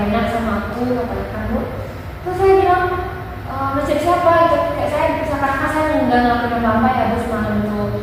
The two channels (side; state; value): both; identical; correlation 1.00